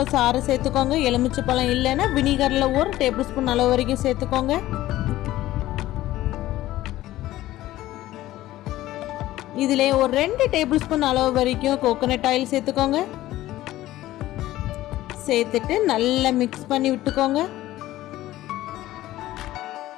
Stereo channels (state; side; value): quieter; right; 15.4 dB